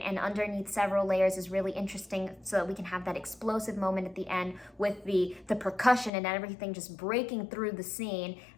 underneath several layers is really interesting, so that we can have that explosive moment at the end with the percussion and everything just breaking through the scene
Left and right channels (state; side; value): drops out; right; at 6.1 s